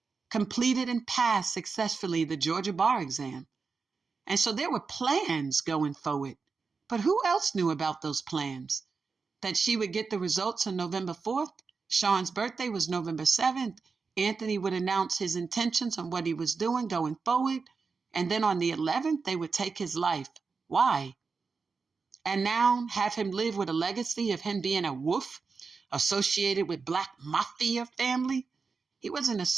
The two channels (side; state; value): left; quieter; 4.8 dB